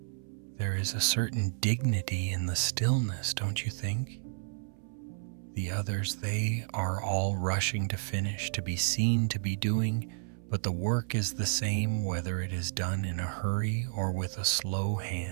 There is a certain dignity in the stillness, don't you think? The others, they are all rushing to finish, to be seen, to be doing, but the work is the same whether it is done in a hurry or with a slow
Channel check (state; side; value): silent; left; 57 dB below the other